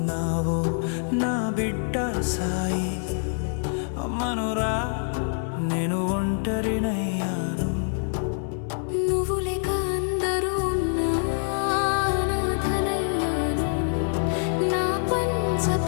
నా బిడ్డ సాయి అమ్మనురా నేను ఒంటరినయ్యాను నువ్వు లేక అందరూ ఉన్నా అనాథనయ్యాను నా పంచ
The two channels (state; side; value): silent; right; 61 dB below the other